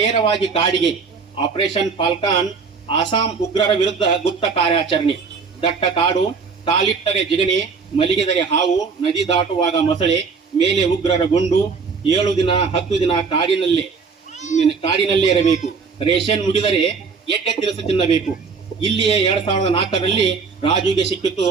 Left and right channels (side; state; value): left; quieter; 5.1 dB